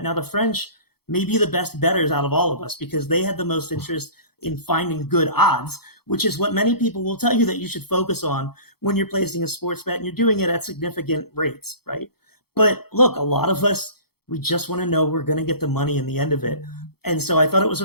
Now, the French may be the best bettors out of all of us because they had the most interest in finding good odds, which is what many people will tell you that you should focus on when you're placing a sports bet and you're doing it at significant rates, right? But look, a lot of us, we just want to know we're going to get the money in the end of it. And so I thought it was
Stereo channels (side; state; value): right; late; 0.96 ms